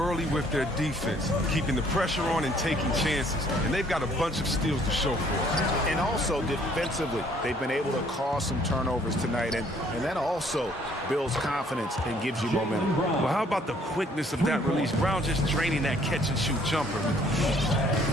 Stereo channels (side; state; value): both; normal; correlation 0.62